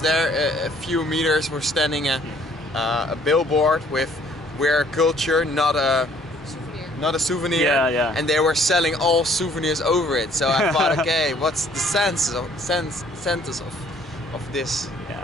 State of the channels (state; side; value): normal; both; correlation 0.60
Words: a few meters we're standing a billboard with "We're culture, not a souvenir." And they were selling all souvenirs over it. So I thought, okay, what's the sense of this?